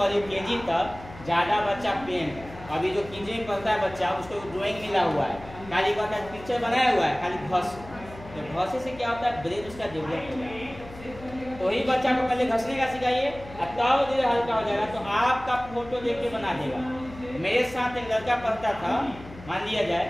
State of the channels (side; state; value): left; noise; hum, 17 dB below the sound